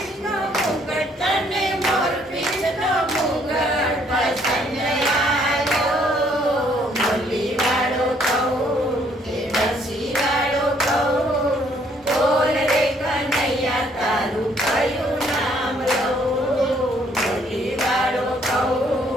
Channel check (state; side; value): normal; both; correlation 0.66